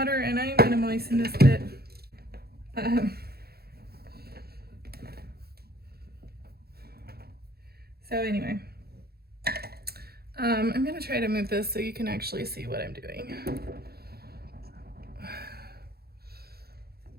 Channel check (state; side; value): late; left; 0.46 ms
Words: and I'm gonna moisten this bit. So anyway, I'm gonna try to move this so you can actually see what I'm doing.